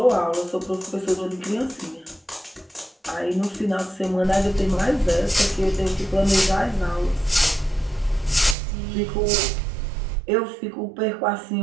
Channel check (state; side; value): drops out; left; at 8.6 s